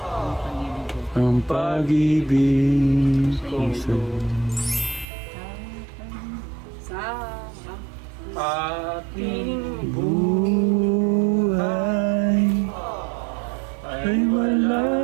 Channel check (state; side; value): drops out; left; at 5.1 s